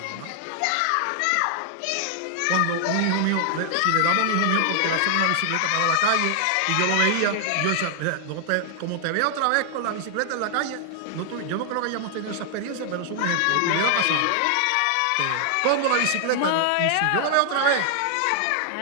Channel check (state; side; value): different; both; correlation 0.00